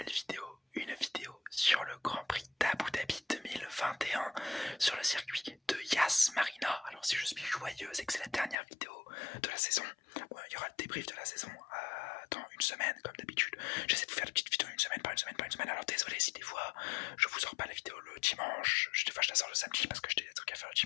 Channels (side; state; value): right; drops out; at 8.6 s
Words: vidéo, sur le Grand Prix d'Abu Dhabi 2021 sur le circuit de Yas Marina. Alors si je suis joyeux, c'est que c'est la dernière vidéo de la saison. Bon, il y aura le débrief de la saison dans une semaine comme d'habitude. J'essaie de vous faire des petites vidéos une semaine par une semaine. Alors désolé si des fois je vous sors pas la vidéo le dimanche, des fois je la sors le samedi parce que j'ai des trucs à faire le